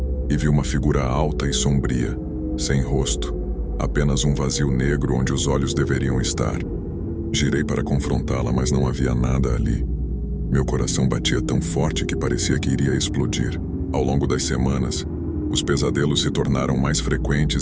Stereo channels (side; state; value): both; identical; correlation 1.00